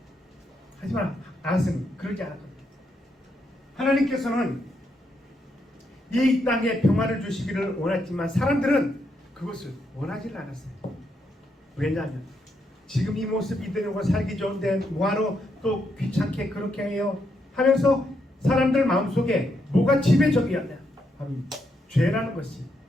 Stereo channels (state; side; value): normal; both; correlation 0.79